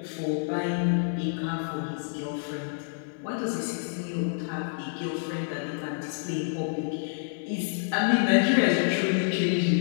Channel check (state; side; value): silent; right; digital silence